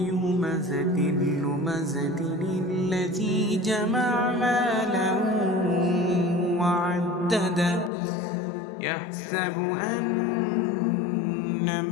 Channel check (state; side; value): drops out; right; at 7.9 s